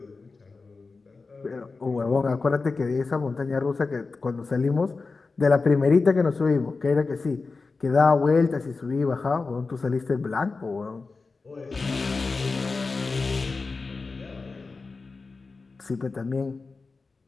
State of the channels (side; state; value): right; quieter; 4.1 dB